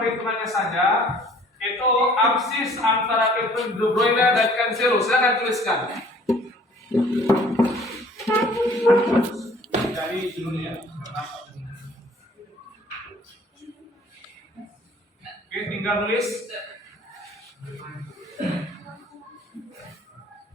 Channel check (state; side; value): normal; both; correlation 0.54